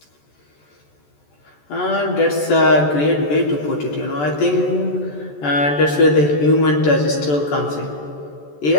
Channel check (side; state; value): right; late; 14 ms